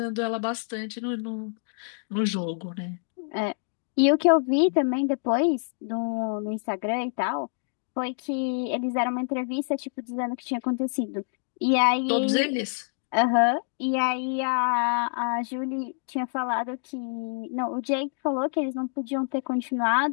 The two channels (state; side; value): silent; right; digital silence